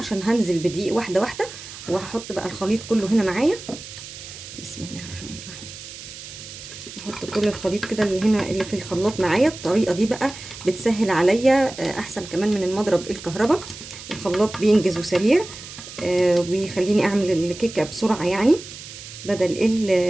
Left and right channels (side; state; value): right; noise; hiss, 14 dB below the sound